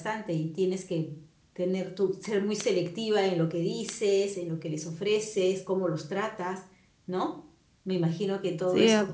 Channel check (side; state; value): both; identical; correlation 1.00